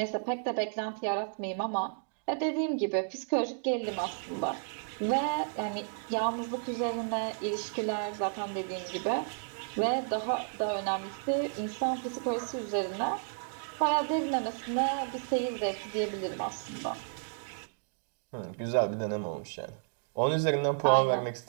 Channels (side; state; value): left; silent; digital silence